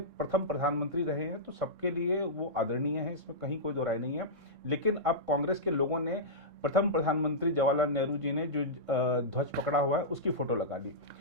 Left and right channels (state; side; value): late; left; 3.7 ms